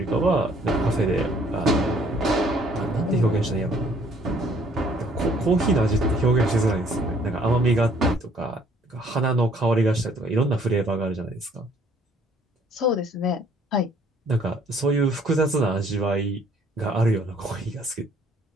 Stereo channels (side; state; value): both; normal; correlation 0.60